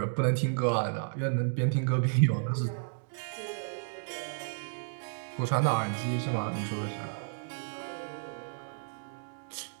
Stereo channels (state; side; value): silent; left; digital silence